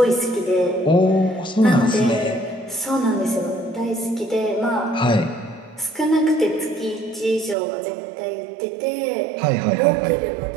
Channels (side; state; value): left; drops out; at 7.6 s